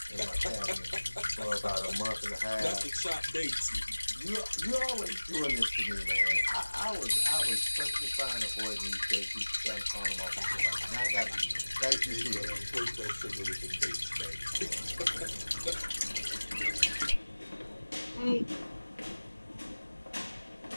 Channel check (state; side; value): inverted; both; correlation -1.00